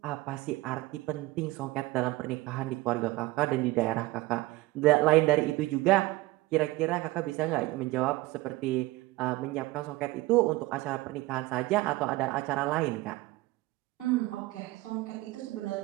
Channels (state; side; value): quieter; left; 19.6 dB